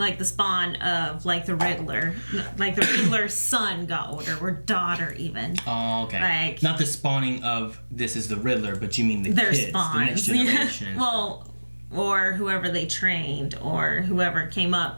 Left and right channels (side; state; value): both; inverted; correlation -1.00